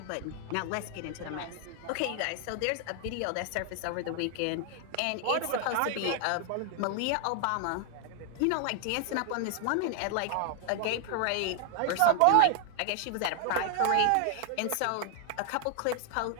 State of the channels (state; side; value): different; both; correlation 0.00